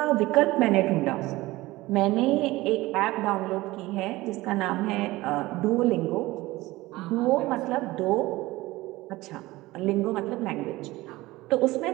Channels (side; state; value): left; quieter; 19.1 dB